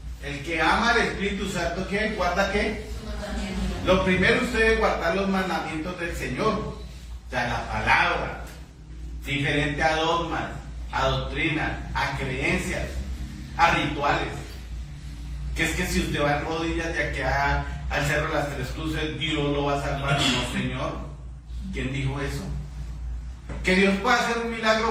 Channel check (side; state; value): both; identical; correlation 1.00